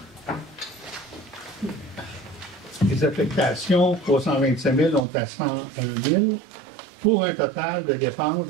Les affectations, 325 000, on est à 101 000, pour un total de dépenses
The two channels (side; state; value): left; drops out; at 5.0 s